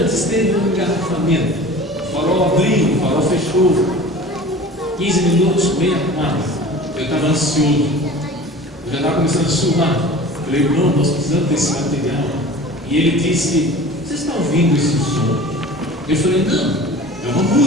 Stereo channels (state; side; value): normal; both; correlation 0.40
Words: teve um engarrafamento. O farol abriu, o farol fechou. 15 minutos, meia quadra. Eu estava ansioso. Eu já estava começando a suar. Falei: irmão, nós precisamos desse material. E ele disse: você está ouvindo esse som? Eu falei: não, é uma